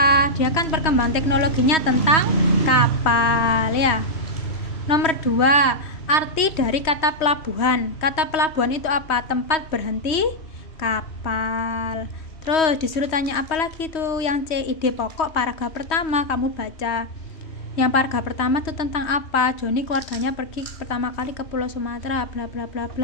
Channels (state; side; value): late; right; 3.1 ms